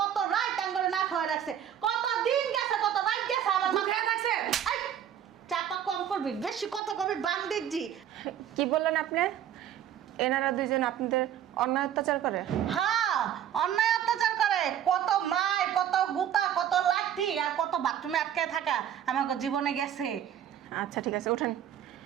রাত টাঙ্গরে না খাওয়া রাখছে, কত দিন গেছে, কত রাত গেছে আমার মা। মুখে থাকছে? এই, চাপা কম করবি, বেশি কথা কবি বান্দির জি। কি বললেন আপনি? এনারা দুইজন আপনাদের অন্যায় অত্যাচার করে? হ্যাঁ, অন্যায় অত্যাচার করে। কত মায়, কত গুতা, কত লাঠি আর কত বাথরুমে আটকে থাকা আমাকে জীবনে গেছে। আচ্ছা ঠিক আছে, ওঠেন,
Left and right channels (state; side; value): quieter; left; 10.0 dB